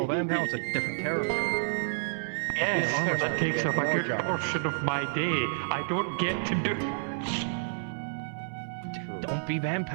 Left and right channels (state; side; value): silent; left; digital silence